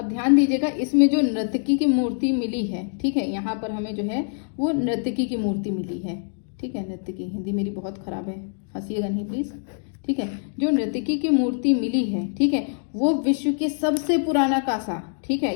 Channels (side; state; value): right; silent; 62 dB below the other